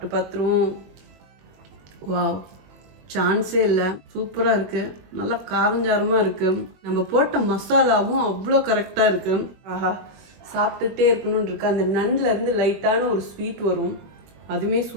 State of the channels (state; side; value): late; left; 21 ms